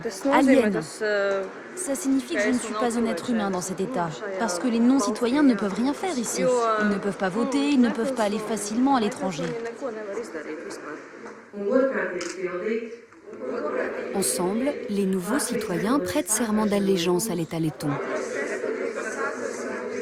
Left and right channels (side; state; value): both; identical; correlation 1.00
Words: alien. Ça signifie que je ne suis pas un être humain dans cet état, parce que les non-citoyens ne peuvent rien faire ici. Ils ne peuvent pas voter, ils ne peuvent pas aller facilement à l'étranger. Ensemble, les nouveaux citoyens prêtent serment d'allégeance à l'État letton.